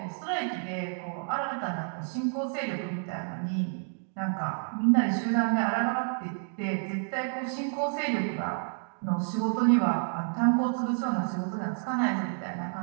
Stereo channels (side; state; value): left; silent; 58 dB below the other